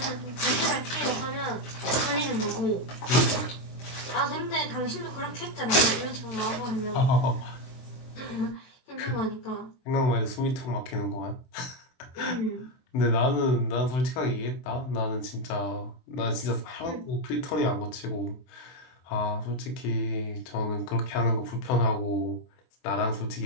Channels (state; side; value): late; right; 23 ms